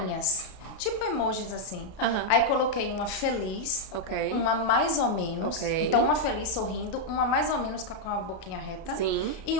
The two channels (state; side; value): late; right; 32 ms